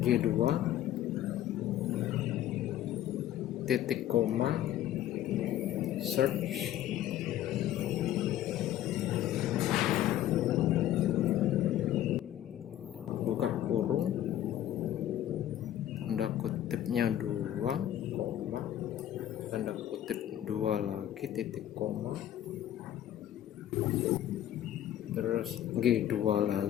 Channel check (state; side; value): quieter; right; 12.1 dB